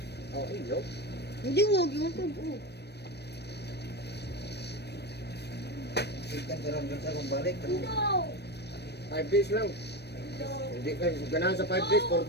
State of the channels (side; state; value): right; late; 0.48 ms